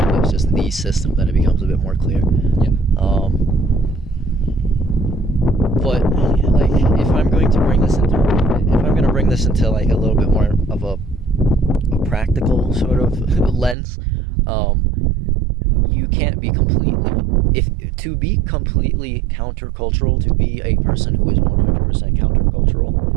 it's just the system, then it becomes a bit more clear. Yeah. But like, if I'm going to bring this into like a little bit more of a practical sort of lens, you can't be to be completely countercultural, to be a person who is 100% countercultural,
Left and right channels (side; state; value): left; drops out; at 13.8 s